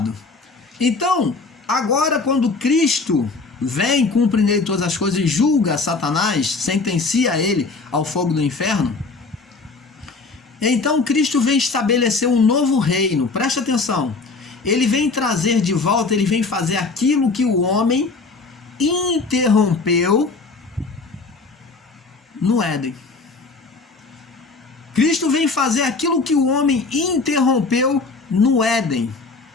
Então, agora quando Cristo vem, cumpre nele todas as coisas e julga Satanás, sentencia ele ao fogo do inferno, então Cristo vem estabelecer um novo reino. Presta atenção. Ele vem trazer de volta, ele vem fazer aquilo que o homem interrompeu no Éden. Cristo vem fazer aquilo que o homem interrompeu no Éden,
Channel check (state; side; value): quieter; right; 4.0 dB